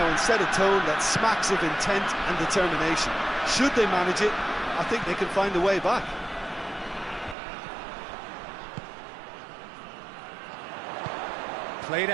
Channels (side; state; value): left; drops out; at 7.4 s